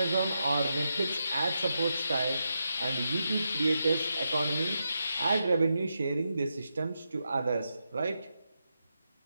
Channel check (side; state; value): both; inverted; correlation -0.85